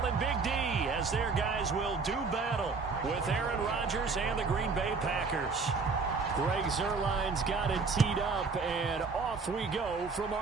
in Big D as their guys will do battle with Aaron Rodgers and the Green Bay Packers. Greg Zuerlein's got it teed up, and off we go from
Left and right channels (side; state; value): left; quieter; 4.5 dB